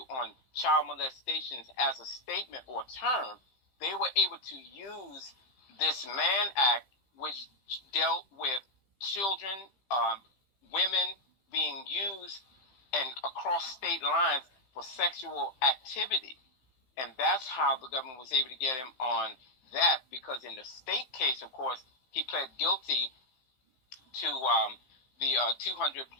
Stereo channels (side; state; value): right; late; 15 ms